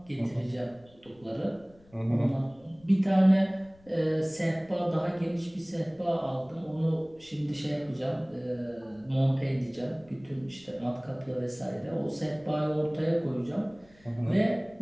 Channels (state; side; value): noise; left; rumble, 28 dB below the sound